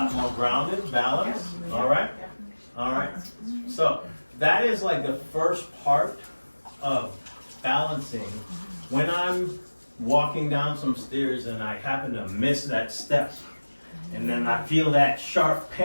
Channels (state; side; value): inverted; both; correlation -1.00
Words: more grounded, balanced. All right. All right. So that is like the first part of balancing. When I'm walking down some stairs and I happen to miss that step, and then I feel that sharp